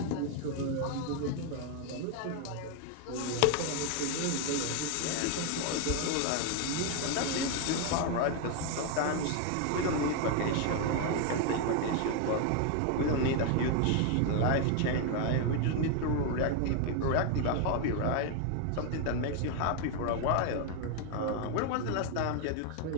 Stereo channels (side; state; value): both; different; correlation 0.01